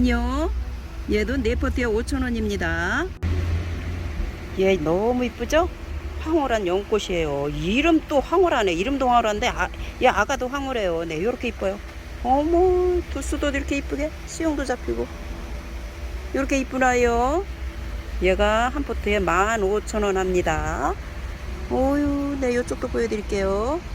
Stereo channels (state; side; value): identical; both; correlation 1.00